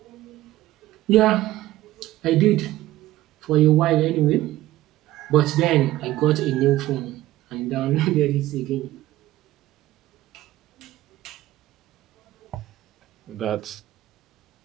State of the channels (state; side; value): quieter; left; 15.7 dB